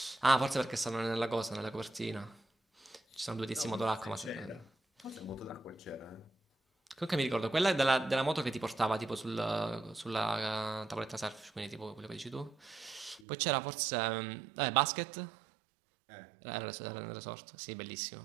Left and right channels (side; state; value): left; drops out; at 13.2 s